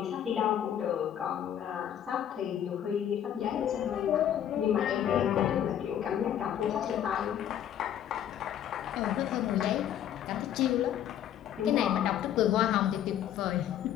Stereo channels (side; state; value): right; quieter; 10.3 dB